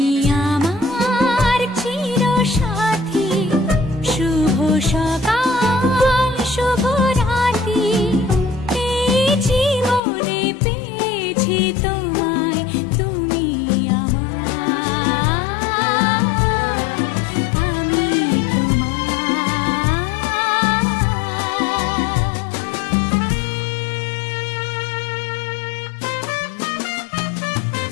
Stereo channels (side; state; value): right; drops out; at 10.0 s